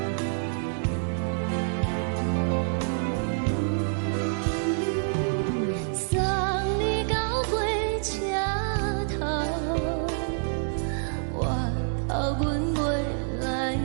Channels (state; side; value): silent; left; digital silence